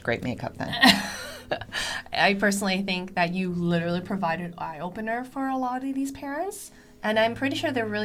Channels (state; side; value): identical; both; correlation 1.00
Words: great makeup then. I personally think that you literally provided an eye-opener for a lot of these parents. And I'm pretty sure they're